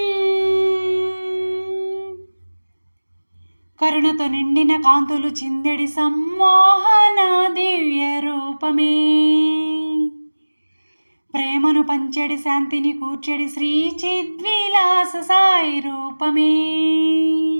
కరుణతో నిండిన కాంతులు చిందెడి సమ్మోహన దివ్య రూపమే, ప్రేమను పంచెడి శాంతిని కూర్చెడి శ్రీ చిద్విలాస సాయి రూపమే.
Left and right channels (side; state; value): both; inverted; correlation -1.00